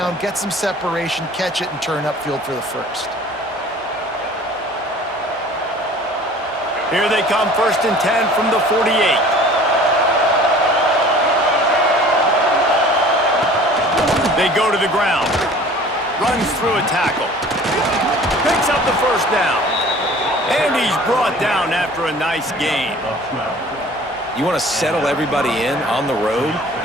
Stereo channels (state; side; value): normal; both; correlation 0.47